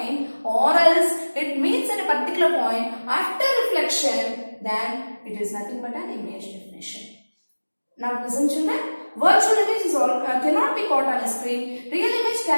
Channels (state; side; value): inverted; both; correlation -1.00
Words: or else it meets at a particular point. After reflection, then it is nothing but an image definition. Now listen, children. Virtual image is cannot be caught on a screen. Real image